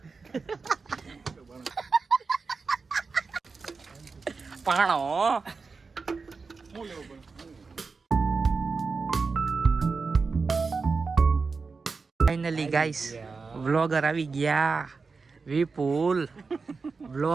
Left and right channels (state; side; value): quieter; left; 4.6 dB